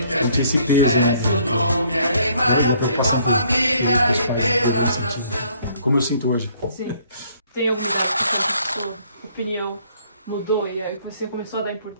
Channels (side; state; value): both; inverted; correlation -0.63